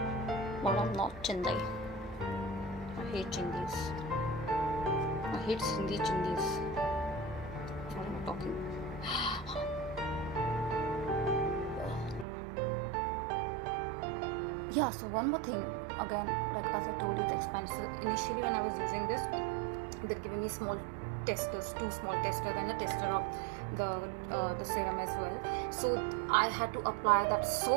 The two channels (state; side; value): drops out; left; at 12.2 s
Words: but I'm not Chindi. I hate Chindis. I hate Sindhi Chindis. Talking. Yeah, so one more thing, again, like as I told you, it's expensive. Initially when I was using this, they're giving me small testers, 2 small testers, and a tester of the serum as well. So I had to apply that so